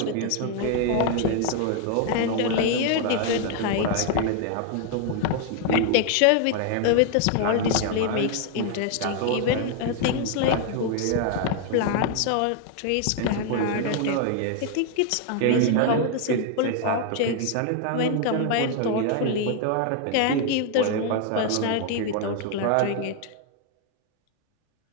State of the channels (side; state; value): both; different; correlation 0.00